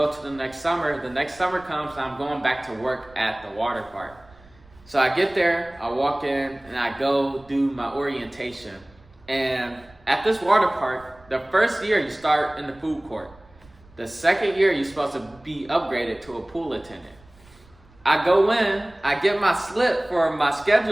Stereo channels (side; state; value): right; noise; rumble, 27 dB below the sound